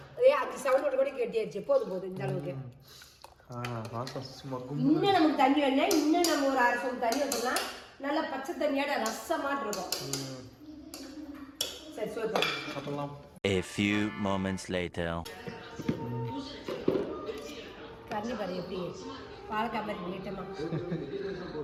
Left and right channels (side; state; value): both; identical; correlation 1.00